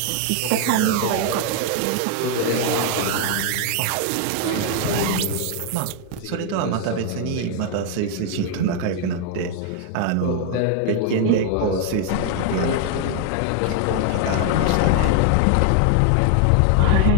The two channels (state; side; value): different; both; correlation 0.00